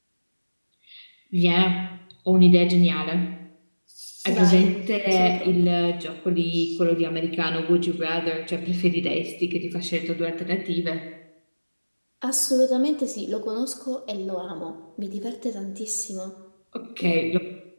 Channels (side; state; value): both; inverted; correlation -1.00